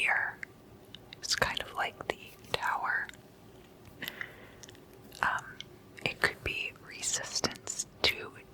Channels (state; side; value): identical; both; correlation 1.00